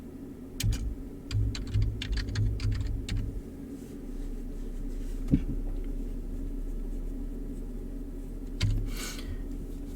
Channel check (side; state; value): both; identical; correlation 1.00